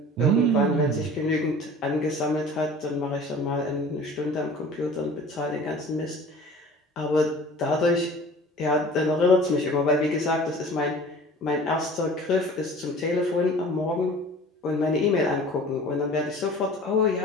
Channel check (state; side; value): normal; both; correlation 0.44